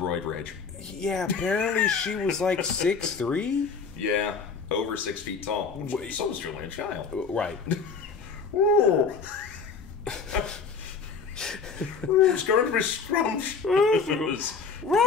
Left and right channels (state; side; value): quieter; right; 5.3 dB